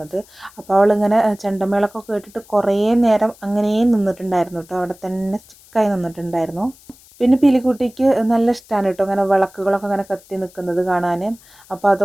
അപ്പോൾ അവളിങ്ങനെ ചെണ്ടമേളൊക്കെ കേട്ടിട്ട് കുറേ നേരം അങ്ങനെ നിന്നിട്ടുണ്ടായിരുന്നു കേട്ടോ, അവിടെ തന്നെ സ്റ്റിക്കായി നിന്നിട്ടുണ്ടായിരുന്നു. പിന്നെ പീലിക്കുട്ടിക്ക് നല്ല ഇഷ്ടമാണ് കേട്ടോ അങ്ങനെ വിളക്കുകളൊക്കെ അങ്ങനെ കത്തി നിൽക്കുന്നത് കാണാൻ. അപ്പോൾ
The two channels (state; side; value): noise; left; hiss, 26 dB below the sound